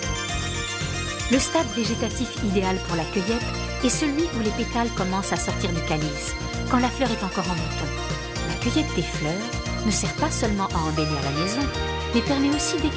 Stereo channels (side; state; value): both; identical; correlation 1.00